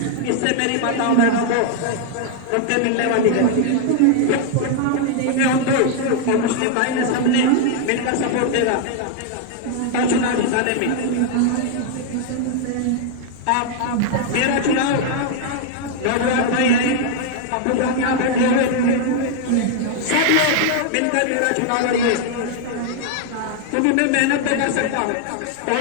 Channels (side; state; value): both; different; correlation 0.00